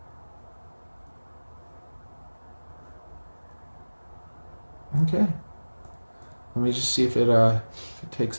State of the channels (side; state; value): both; inverted; correlation -1.00